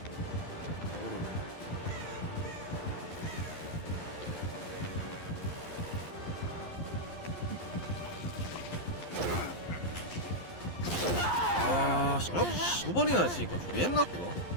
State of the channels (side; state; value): right; late; 11 ms